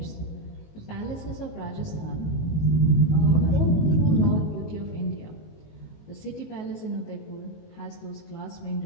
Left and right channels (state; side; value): late; right; 19 ms